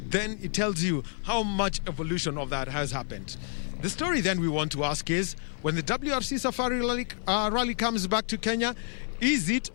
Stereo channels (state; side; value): silent; right; 58 dB below the other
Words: Then it tells you how much evolution of that has happened. The story then we want to ask is, when the WRC Safari Rally comes back to Kenya, is it